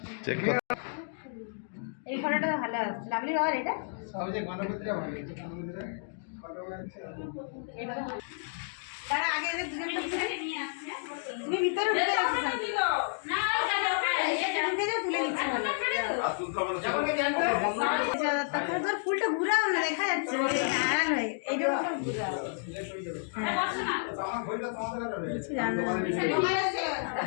চেক কর। এই ফটোটা তো ভালো আসছে। লাভলি বাবার এটা সবচেয়ে গণপতিটা ভালো হয়েছে। গণপতিটা ফটো আছে। তারা আগে এদের দুজনকে ভিতরে নিয়ে আসছে। তুমি ভিতরে ঢুকে যাচ্ছ না, ঢুকে যাও, তুলে নিচ্ছি ভালো। তারপরে তোর ফুলটা ঘুরাও না, দেখা যাচ্ছে আড়াল হয়ে এইটা ঘুরাও। কিছু জানো না।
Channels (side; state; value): right; silent; digital silence